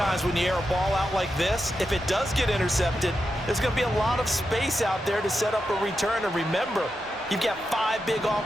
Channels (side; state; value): both; normal; correlation 0.87